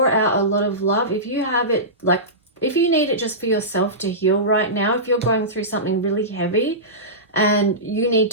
out a lot of love. If you have it, like if you need it just for yourself to heal right now, if you're going through something really heavy and you need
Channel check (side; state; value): both; normal; correlation -0.19